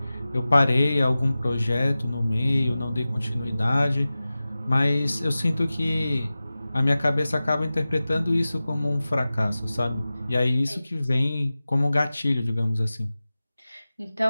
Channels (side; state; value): both; inverted; correlation -0.96